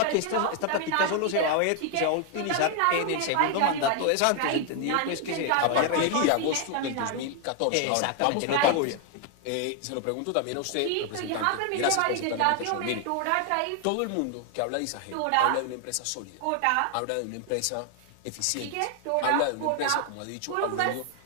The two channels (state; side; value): different; both; correlation 0.00